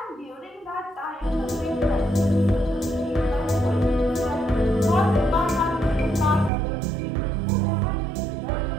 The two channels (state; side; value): drops out; left; at 6.5 s